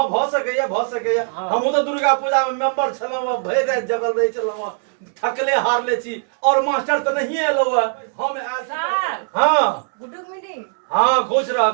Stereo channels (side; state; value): left; silent; 66 dB below the other